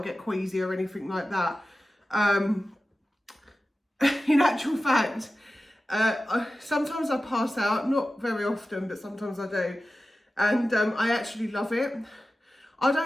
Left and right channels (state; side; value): normal; both; correlation 0.94